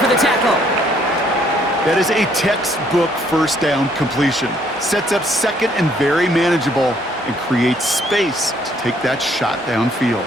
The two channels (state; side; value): normal; both; correlation 0.66